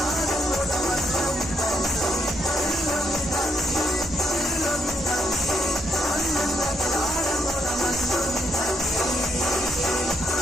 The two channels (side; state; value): both; normal; correlation 0.77